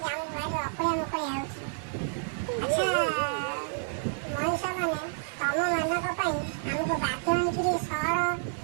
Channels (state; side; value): silent; left; 58 dB below the other